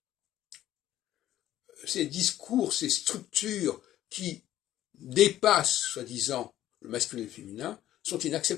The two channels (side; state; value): right; quieter; 13.1 dB